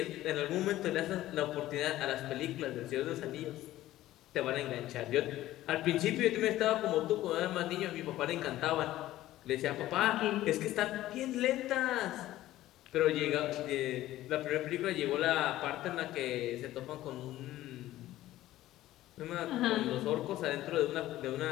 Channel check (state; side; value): quieter; right; 15.0 dB